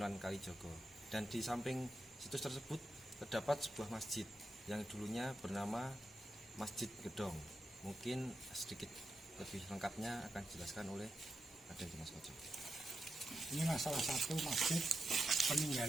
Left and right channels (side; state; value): both; normal; correlation 0.87